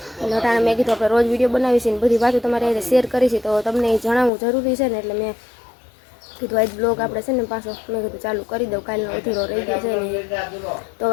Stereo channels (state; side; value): drops out; right; at 4.3 s